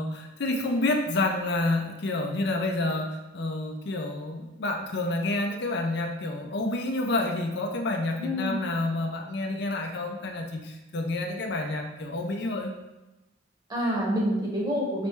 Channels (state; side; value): normal; both; correlation 0.44